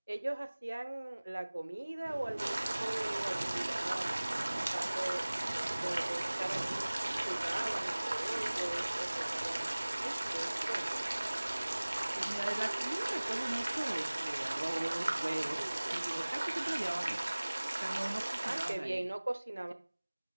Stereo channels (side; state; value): both; inverted; correlation -1.00